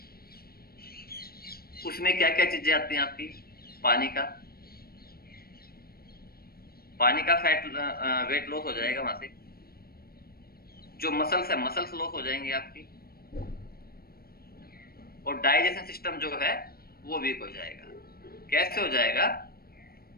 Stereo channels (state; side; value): late; right; 0.44 ms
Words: उसमें क्या क्या चीजें आती हैं आपकी? पानी का पानी का फैट वेट लॉस हो जाएगा वहां से। जो मसल्स है, मसल्स लॉस हो जाएंगे आपकी। और डाइजेशन सिस्टम जो है वो वीक हो जाएगा। कैसे हो जाएगा?